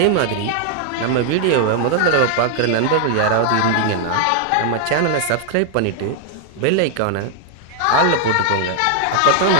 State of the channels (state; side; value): different; both; correlation 0.00